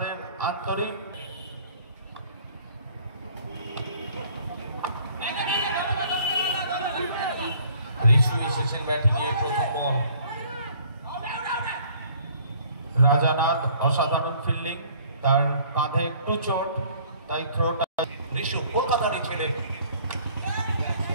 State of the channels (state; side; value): inverted; both; correlation -0.57